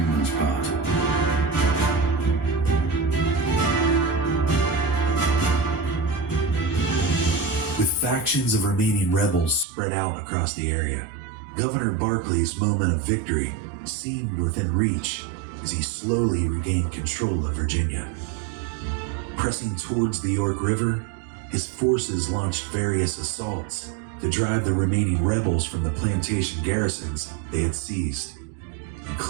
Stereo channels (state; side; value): drops out; left; at 9.7 s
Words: part. With factions of remaining rebels spread out across the area, Governor Barclay's moment of victory seemed within reach as he slowly regained control of Virginia. Pressing towards the York River, his forces launched various assaults to drive the remaining rebels from the plantation garrisons they had seized,